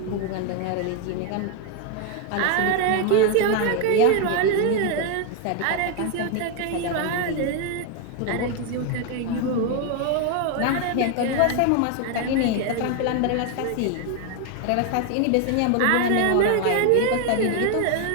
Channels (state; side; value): different; both; correlation 0.01